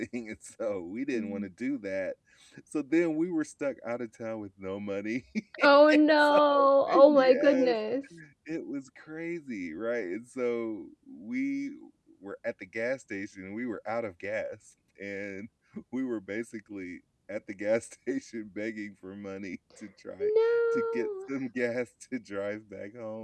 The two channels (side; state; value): both; identical; correlation 1.00